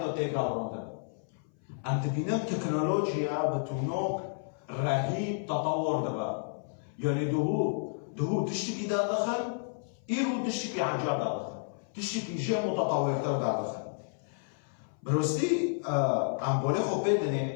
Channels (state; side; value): silent; right; 57 dB below the other